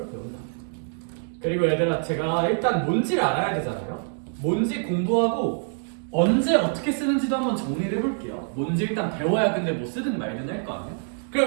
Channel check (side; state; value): left; silent; digital silence